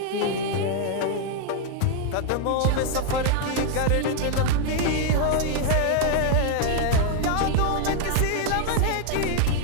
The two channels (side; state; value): both; different; correlation 0.00